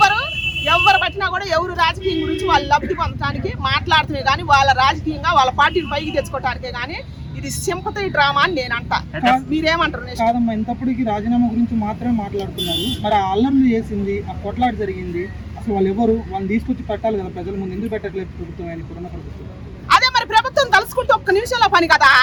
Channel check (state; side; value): identical; both; correlation 1.00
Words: ఎవరు పట్టినా కూడా ఎవరు రాజకీయం గురించి వాళ్ళు లబ్ధి పొందడానికి మాట్లాడుతున్నాయి, కానీ వాళ్ళ రాజకీయంగా వాళ్ళ పార్టీని పైకి తెచ్చుకోవటానికే. కానీ ఇది సింపతి డ్రామా అని నేను అంటా. మీరేమంటారు? కాదమ్మా, ఇంతప్పటికి రాజీనామా గురించి మాత్రమే మాట్లాడుతున్నారు. మరి ఆ అల్లర్లు చేసింది, ఆ కొట్లాట జరిగింది, అసలు వాళ్ళు ఎవరు? వాళ్ళని తీసుకొచ్చి పెట్టాలి కదా ప్రజల ముందు. ఎందుకు పెట్టట్లేదు ప్రభుత్వం? ఆయన ఇప్పుడున్న ప్రభుత్వం అదే మరి ప్రభుత్వం తలుసుకుంటే ఒక్క నిమిషంలో పని కదా,